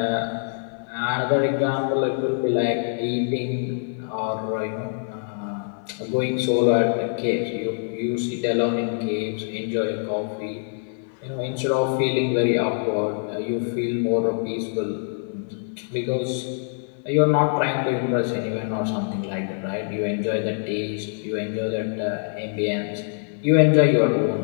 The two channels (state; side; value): silent; right; 62 dB below the other